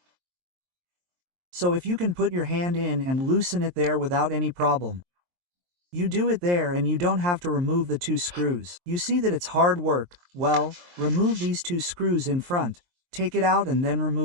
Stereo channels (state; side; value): late; left; 23 ms